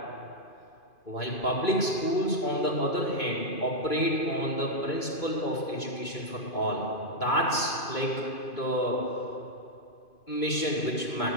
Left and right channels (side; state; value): right; late; 2.5 ms